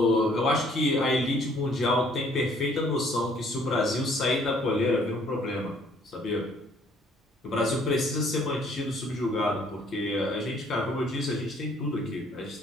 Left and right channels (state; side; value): normal; both; correlation 0.61